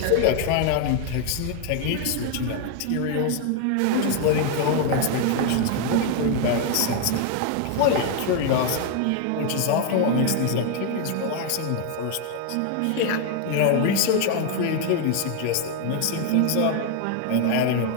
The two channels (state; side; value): different; both; correlation 0.01